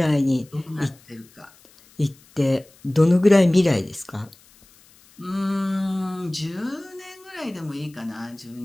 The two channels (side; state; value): left; noise; hiss, 28 dB below the sound